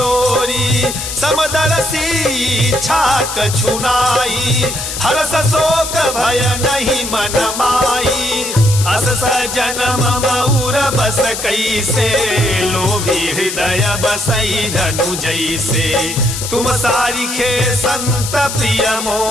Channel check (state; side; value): noise; left; hiss, 6 dB below the sound